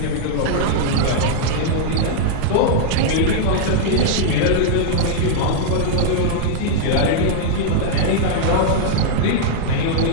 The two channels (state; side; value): different; both; correlation -0.01